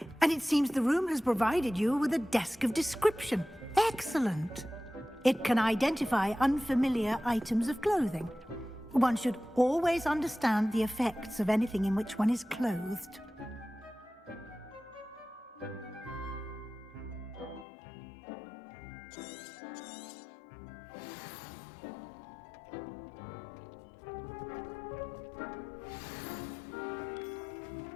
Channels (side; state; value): right; drops out; at 17.7 s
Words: and it seems the room has provided you with a desk of description. Excellent. It can identify unfamiliar items of clothing. One should always understand the effects of anything in which one is clothed.